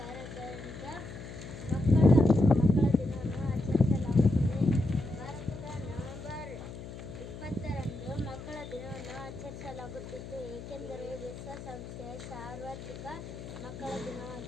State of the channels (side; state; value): left; noise; hum, 11 dB below the sound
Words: ಮಕ್ಕಳ ದಿನವನ್ನು ಆಚರಿಸಲಾಗುತ್ತದೆ. ಭಾರತದ ನವೆಂಬರ್ 20ರಂದು ಮಕ್ಕಳ ದಿನವನ್ನು ಆಚರಿಸಲಾಗುತ್ತಿತ್ತು, ಏಕೆಂದರೆ ವಿಶ್ವಸಂಸ್ಥೆಯ ಸಾರ್ವತ್ರಿಕ ಮಕ್ಕಳ